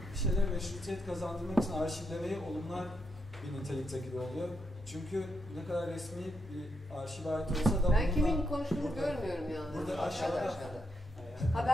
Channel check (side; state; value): both; normal; correlation 0.81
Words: bir şeyler meşrutiyet kazandırmak için arşivlemeyi olumlar bir nitelikte gibi oluyor. Çünkü ne kadar resmi bir arşiv ait olsa da ben kimin konuştuğunu görmüyorum yalnız. Burada aşağıda. Ha